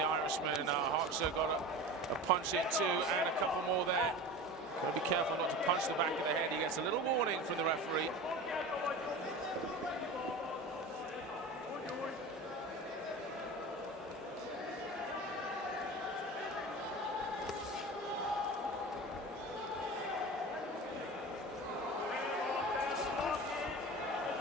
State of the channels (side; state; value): both; normal; correlation 0.32